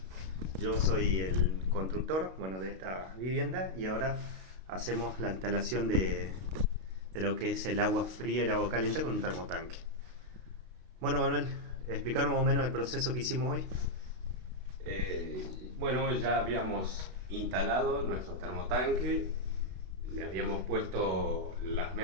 yo soy el constructor, bueno, de esta vivienda y ahora hacemos la instalación de lo que es el agua fría y el agua caliente con un termotanque. Bueno, Manuel, explicar más o menos el proceso que hicimos hoy. Bueno, ya habíamos instalado nuestro termotanque, le habíamos puesto las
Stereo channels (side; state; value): left; late; 32 ms